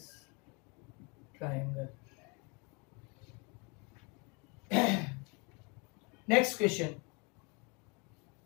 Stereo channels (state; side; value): quieter; right; 31.2 dB